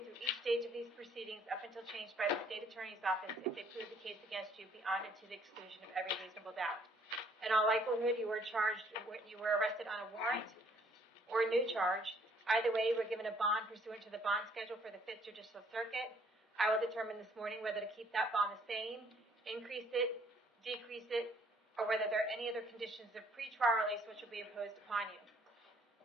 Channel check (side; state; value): both; normal; correlation 0.62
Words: through each stage of these proceedings up until changed by the State Attorney's Office if they prove the case against you beyond and to the exclusion of every reasonable doubt. In all likelihood, you were arrested on a warrant or a new charge. Either way, you were given a bond pursuant to the bond schedule for the 5th Judicial Circuit. I will determine this morning whether to keep that bond the same, increase it, decrease it, or whether there are any other conditions of pretrial release which will be imposed upon you.